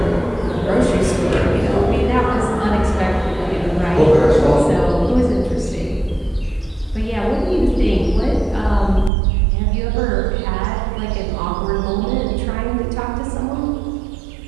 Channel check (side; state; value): left; drops out; at 9.1 s